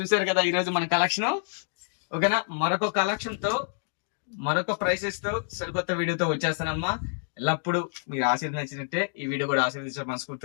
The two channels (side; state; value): right; silent; digital silence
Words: కదా ఈ రోజు మన కలెక్షన్. ఓకేనా? మరొక కలెక్షన్ తో, మరొక ప్రైసెస్ తో, సరికొత్త వీడియోతో వచ్చేస్తానమ్మా. ఎల్లప్పుడు మీరు ఆశీర్వదించినట్టే ఈ వీడియో కూడా ఆశీర్వదించే